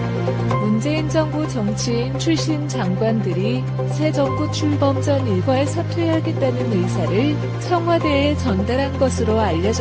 문재인 정부 정치인 출신 장관들이 새 정부 출범 전 일괄 사퇴하겠다는 의사를 청와대에 전달한 것으로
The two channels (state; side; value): identical; both; correlation 1.00